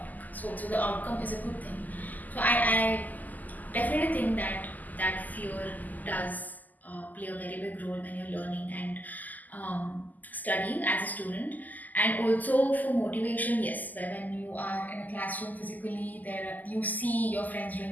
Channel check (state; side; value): late; right; 0.082 ms